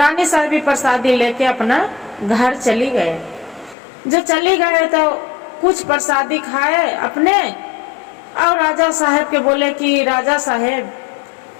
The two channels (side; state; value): right; drops out; at 3.8 s